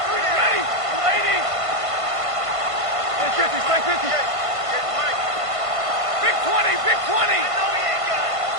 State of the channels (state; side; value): late; left; 1.5 ms